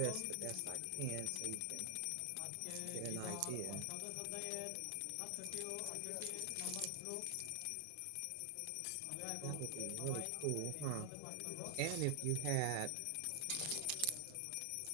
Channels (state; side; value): different; both; correlation 0.00